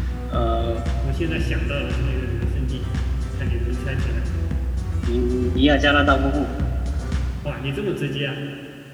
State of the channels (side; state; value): both; identical; correlation 1.00